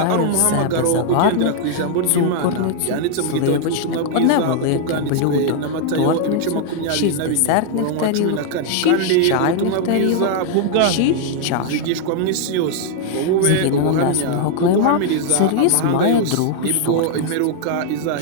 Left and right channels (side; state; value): both; different; correlation 0.00